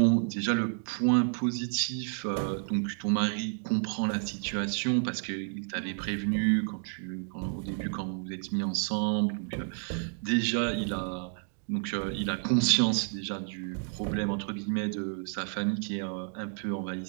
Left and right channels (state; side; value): silent; left; 57 dB below the other